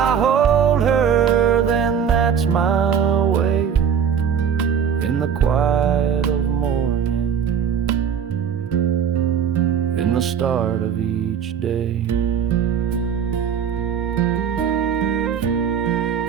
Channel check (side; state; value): left; quieter; 7.8 dB